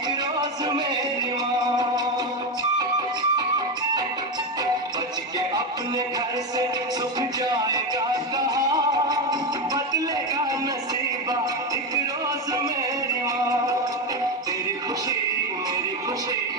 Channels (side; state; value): both; normal; correlation 0.13